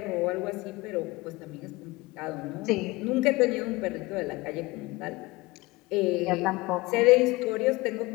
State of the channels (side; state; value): right; quieter; 22.2 dB